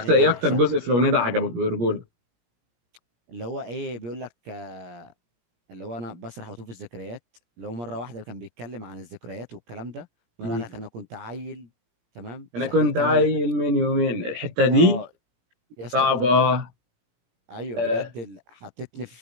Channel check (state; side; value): late; left; 17 ms